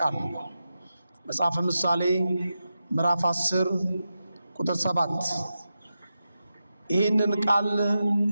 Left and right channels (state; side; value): inverted; both; correlation -0.90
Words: መጽሐፈ ምሳሌ ምዕራፍ 10 ቁጥር 7። ይህንን ቃል